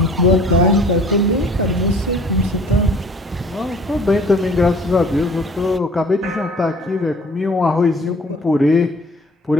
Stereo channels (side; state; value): both; normal; correlation 0.51